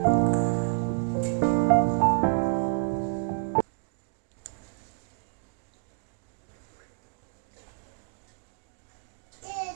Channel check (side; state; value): left; quieter; 35.8 dB